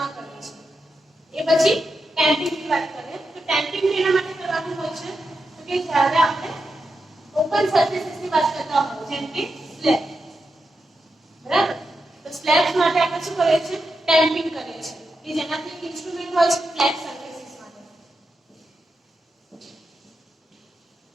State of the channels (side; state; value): both; normal; correlation 0.87